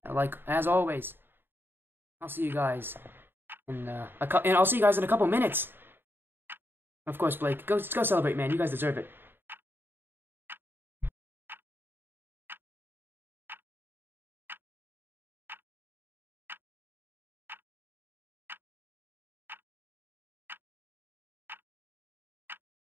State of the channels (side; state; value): left; late; 0.10 ms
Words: like as always. I'll see you guys in I'll see you guys in a couple minutes. Of course, Blake, go celebrate, man. You guys deserve it.